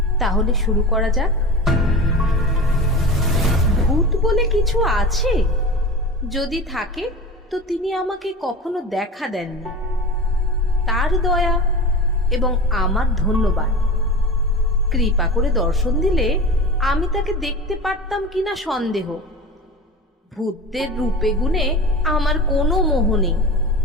তাহলে শুরু করা যাক। ভূত বলে কিছু আছে? যদি থাকে তো তিনি আমাকে কখনো দেখা দেননি। তার দয়া এবং আমার ধন্যবাদ। কৃপা করে দর্শন দিলে আমি তাকে দেখতে পারতাম কিনা সন্দেহ। ভূতদের রূপে গুণে আমার কোনো মোহ নেই।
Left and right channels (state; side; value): normal; both; correlation 0.31